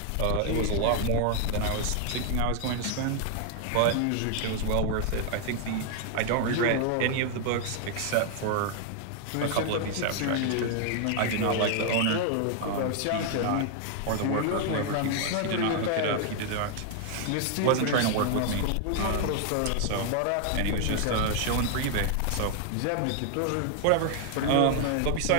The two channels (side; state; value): both; different; correlation 0.00